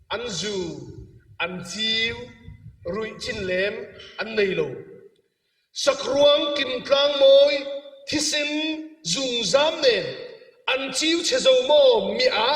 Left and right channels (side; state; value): both; identical; correlation 1.00